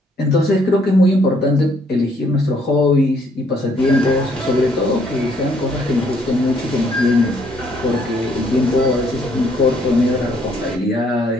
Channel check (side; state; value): both; normal; correlation 0.67